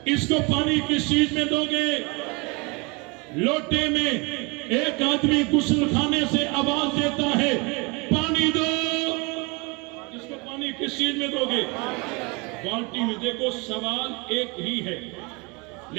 اس کو پانی کس چیز میں دو گے؟ لوٹے میں۔ ایک آدمی غسل خانے سے آواز دیتا ہے پانی دو، اس کو پانی کس چیز میں دو گے؟ بالٹی میں۔ دیکھو سوال ایک ہی ہے،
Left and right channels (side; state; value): left; quieter; 28.7 dB